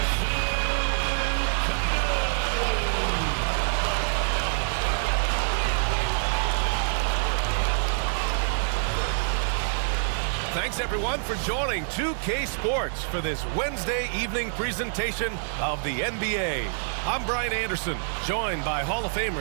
Thanks, everyone, for joining 2K Sports for this Wednesday evening presentation of the NBA. I'm Brian Anderson, joined by Hall of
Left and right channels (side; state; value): left; silent; digital silence